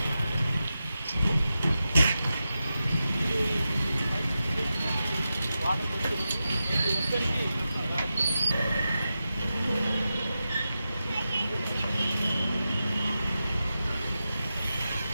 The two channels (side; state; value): both; inverted; correlation -0.91